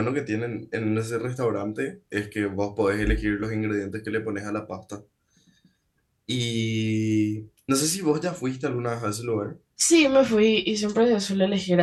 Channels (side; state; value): both; identical; correlation 1.00